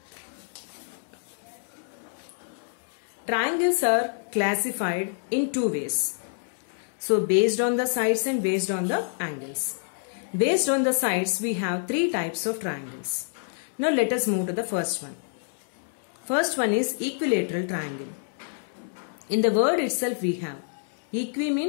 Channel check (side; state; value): right; silent; 60 dB below the other